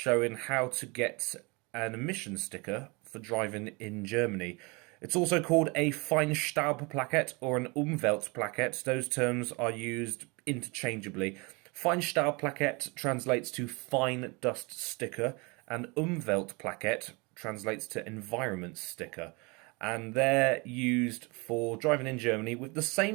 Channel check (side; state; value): left; quieter; 28.3 dB